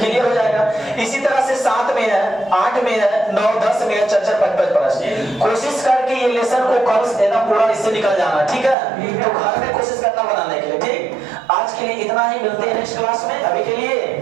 हो जाएगा। इसी तरह से 7 में है, 8 में है, 9, 10 में है, 4, 5 प्रश्न। कोशिश करके ये लेसन को कल देना पूरा, इससे निकल जाना, ठीक है। तो घर में कोशिश करना बनाने के लिए, ठीक। आज के लिए इतना ही, मिलते हैं नेक्स्ट क्लास में। अभी के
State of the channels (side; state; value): left; drops out; at 8.8 s